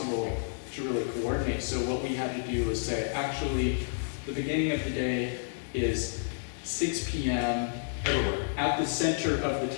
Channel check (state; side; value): silent; right; 58 dB below the other